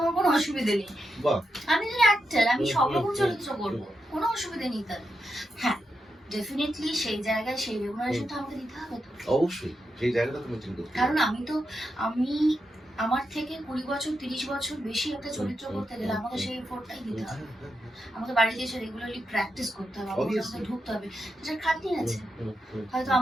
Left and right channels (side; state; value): both; normal; correlation 0.86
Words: কোনো অসুবিধা নেই। বাহ, আমি যদি অ্যাক্টর, আমি সব রকম চরিত্র করবো, কোনো অসুবিধা নেই তার। হ্যাঁ, ডেফিনেটলি সেই জায়গায় সেই রেমুনারেশনটা আমাকে দিতে হবে তো। অবশ্যই সেই জায়গাটা তুমি চিন্তা করতে কারণ আমি আমার থেকে 20 বছর 30 বছর বেশি একটা চরিত্র করতে গেলে আমাকে সেই এফোর্টটাই দিতে হবে। আমাকে বাড়িতে এসে রেগুলারলি প্র্যাকটিস করতে হবে, আমাকে ঢুকতে হবে, সেটা খাটনি আছে। হয়তো